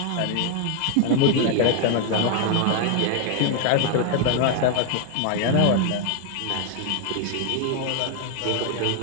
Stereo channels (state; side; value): different; both; correlation 0.00